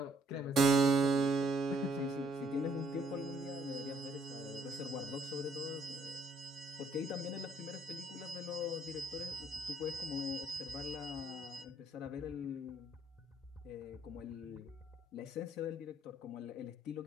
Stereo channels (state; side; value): normal; both; correlation 0.66